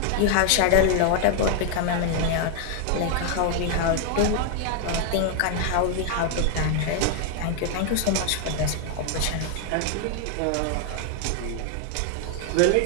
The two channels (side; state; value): both; different; correlation 0.00